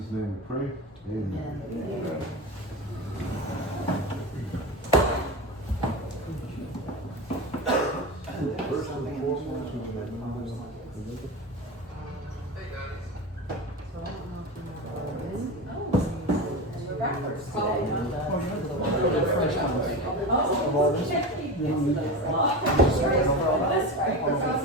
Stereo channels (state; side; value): normal; both; correlation 0.24